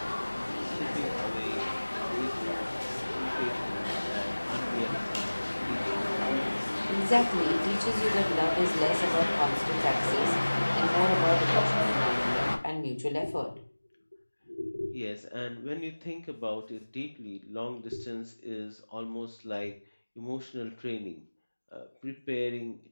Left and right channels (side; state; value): both; inverted; correlation -1.00